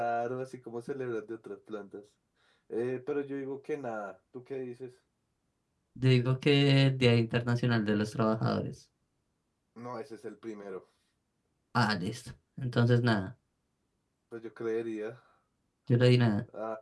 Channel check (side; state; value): both; identical; correlation 1.00